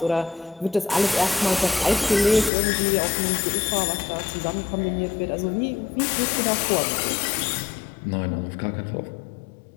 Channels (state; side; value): drops out; right; at 2.5 s